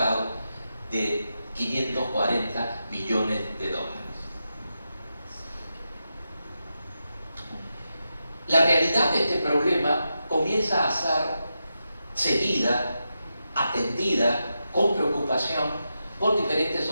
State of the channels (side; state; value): both; inverted; correlation -0.88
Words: de 540 millones de dólares. La realidad de este problema comienza a ser seguida, atendida con preocupación por diferentes